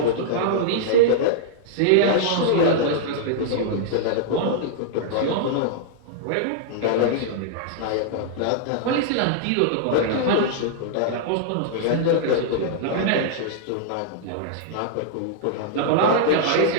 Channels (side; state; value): both; different; correlation -0.01